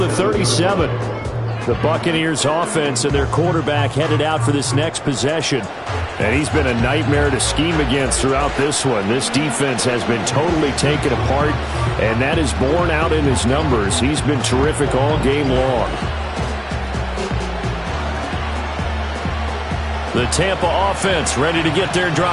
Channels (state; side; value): identical; both; correlation 1.00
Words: 37. The Buccaneers offense and their quarterback headed out for this next possession. And he's been a nightmare to scheme against throughout this one. This defense has been totally taken apart, and that is borne out in his numbers. He's been terrific all game long. The Tampa offense ready to get their